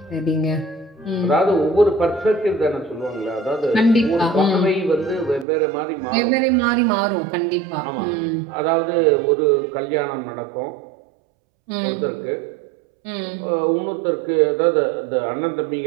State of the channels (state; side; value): drops out; left; at 5.5 s